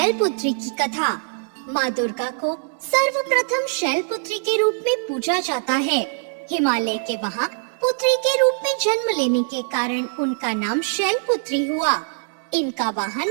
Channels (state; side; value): silent; left; 61 dB below the other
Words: की कथा। माँ दुर्गा को सर्वप्रथम शैलपुत्री के रूप में पूजा जाता है। हिमालय के वहाँ पुत्री के रूप में जन्म लेने के कारण उनका नाम शैलपुत्री हुआ। इनका